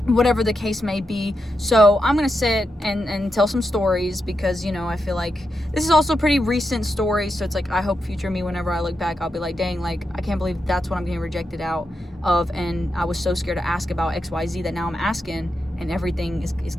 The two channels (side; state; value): both; normal; correlation 0.86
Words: whatever the case may be. So I'm going to sit and tell some stories, because, I feel like this is also pretty recent stories. So it's like, I hope future me, whenever I look back, I'll be like, dang, like, I can't believe that's what I'm getting rejected out of. And I was so scared to ask about XYZ that now I'm asking, and everything is